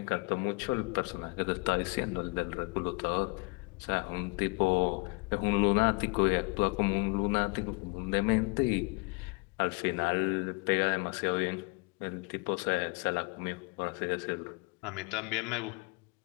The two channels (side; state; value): right; quieter; 28.9 dB